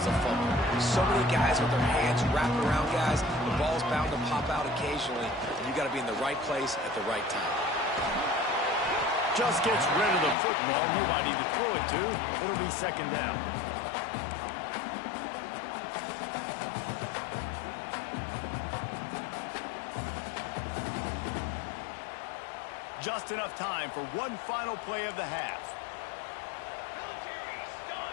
a fumble. So many guys with their hands wrapped around guys, the ball's bound to pop out occasionally, and you got to be in the right place at the right time. Just gets rid of the football, nobody to throw it to. It'll be 2nd down. Just enough time for one final play of the half.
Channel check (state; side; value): drops out; right; at 10.4 s